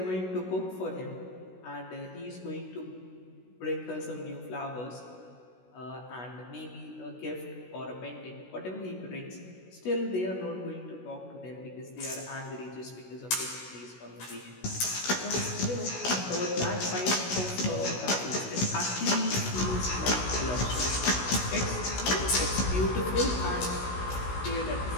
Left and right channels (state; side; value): late; right; 16 ms